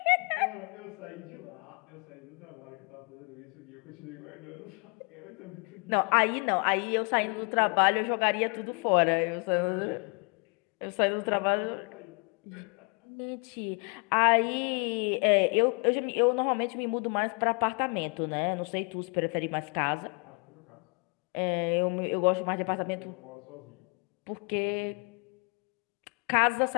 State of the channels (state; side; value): quieter; right; 34.1 dB